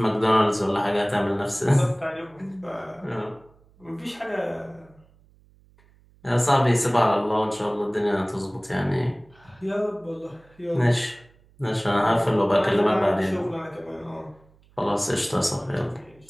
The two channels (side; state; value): right; noise; hum, 30 dB below the sound